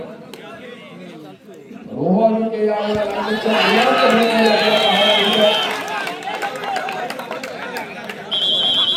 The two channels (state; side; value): identical; both; correlation 1.00